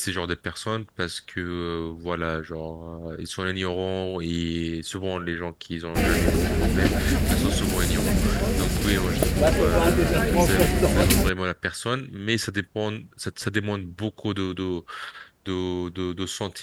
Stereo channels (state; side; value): identical; both; correlation 1.00